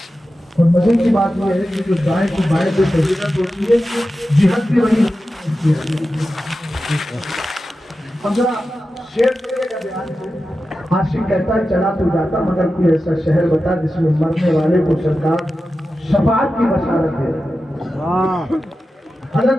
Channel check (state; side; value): normal; both; correlation 0.92